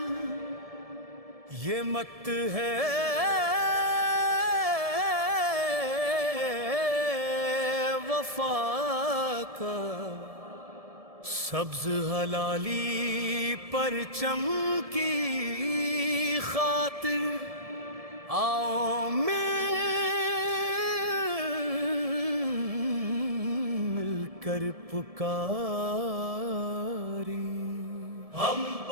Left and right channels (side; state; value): left; late; 1.7 ms